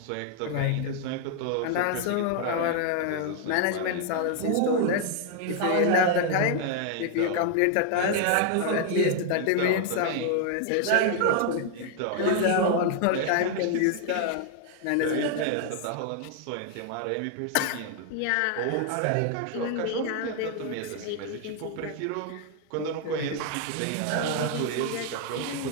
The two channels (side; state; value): both; different; correlation 0.00